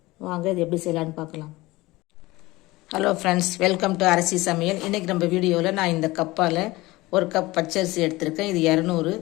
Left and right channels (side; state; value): right; quieter; 20.2 dB